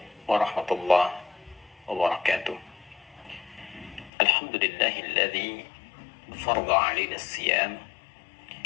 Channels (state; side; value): drops out; right; at 4.1 s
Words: warahmatullahi wabarakatuh. Alhamdulillahilladzi farada 'alaina as-siyam